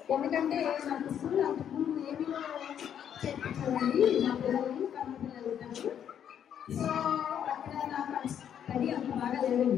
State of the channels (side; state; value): right; quieter; 9.1 dB